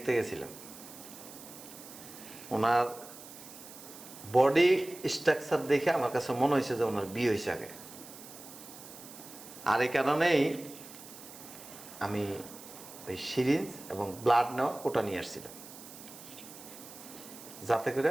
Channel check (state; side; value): noise; right; hiss, 16 dB below the sound